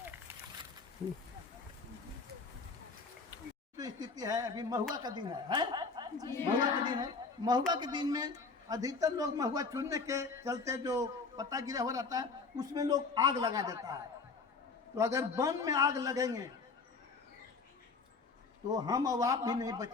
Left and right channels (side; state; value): right; quieter; 4.4 dB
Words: जो स्थिति है अभी महुआ का दिन है? महुआ का दिन है। महुआ के दिन में अधिकतर लोग महुआ चुनने के चलते जो पत्ता गिरा हो रहता है उसमें लोग आग लगा देता है। तो अगर वन में आग लगेंगे तो हम और आप भी नहीं